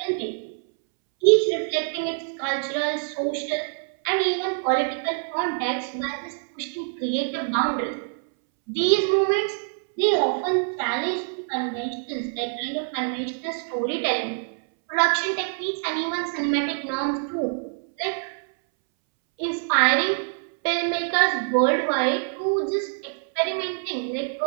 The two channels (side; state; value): left; silent; 62 dB below the other